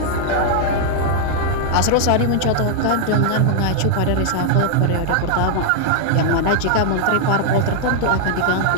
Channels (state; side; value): different; both; correlation 0.00